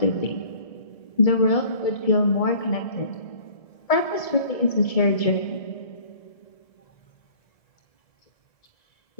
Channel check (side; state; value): right; late; 1.7 ms